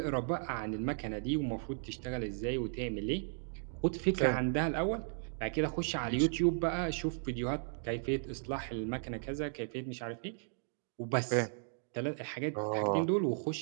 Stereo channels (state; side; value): silent; left; digital silence